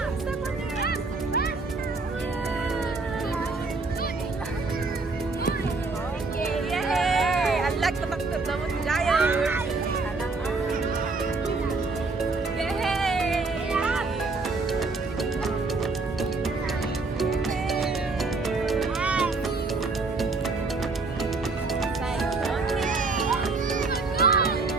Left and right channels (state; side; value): quieter; left; 3.8 dB